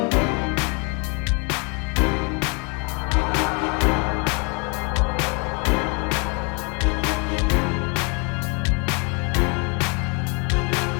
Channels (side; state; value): right; quieter; 33.2 dB